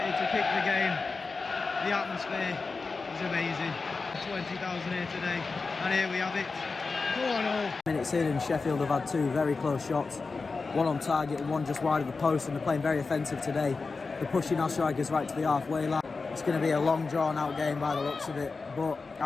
to kick the game. The atmosphere It's amazing. 20,000 here today, and here we have it. 4-0. Minutes in, and Sheffield have had two very close shots. One on target and one just wide of the post, and they're playing very offensive today. They're pushing our strikers right to the halfway line. It's going to be a long, drawn-out game by the looks of it, but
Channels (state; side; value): quieter; right; 4.2 dB